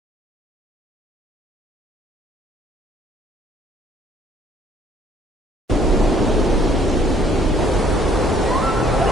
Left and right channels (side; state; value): both; normal; correlation 0.61